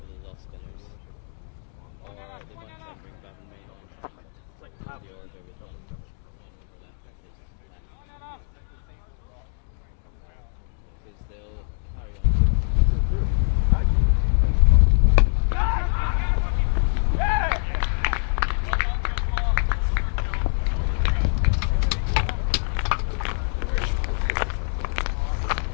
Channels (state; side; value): silent; right; 62 dB below the other